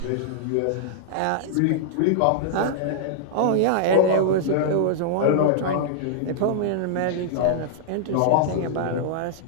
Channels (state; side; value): different; both; correlation -0.01